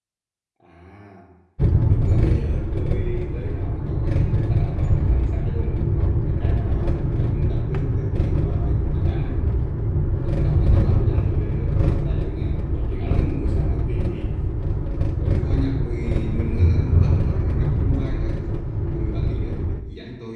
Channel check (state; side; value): identical; both; correlation 1.00